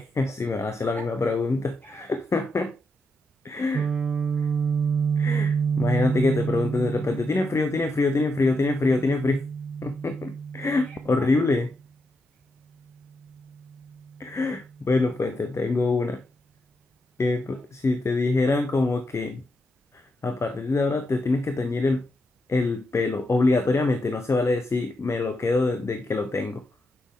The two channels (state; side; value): normal; both; correlation 0.83